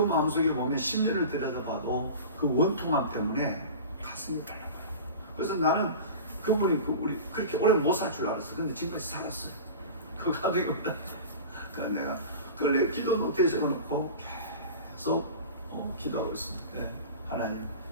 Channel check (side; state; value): both; inverted; correlation -0.34